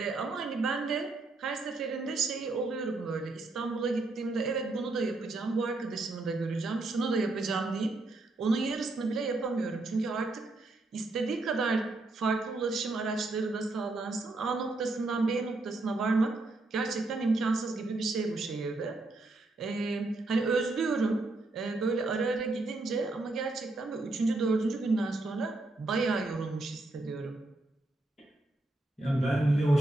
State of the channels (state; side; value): quieter; left; 3.0 dB